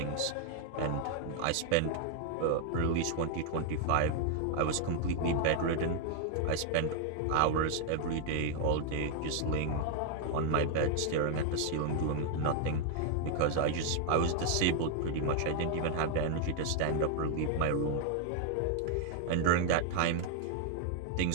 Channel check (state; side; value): different; both; correlation 0.00